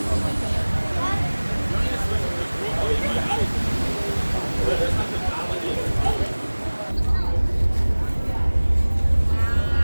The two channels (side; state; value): both; inverted; correlation -1.00